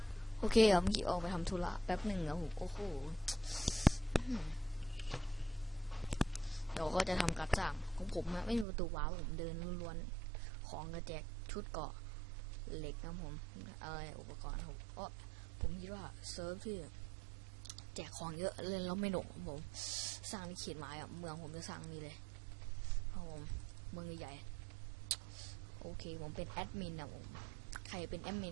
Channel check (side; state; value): left; drops out; at 8.7 s